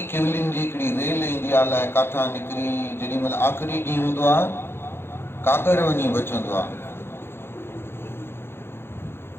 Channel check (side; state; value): right; late; 0.11 ms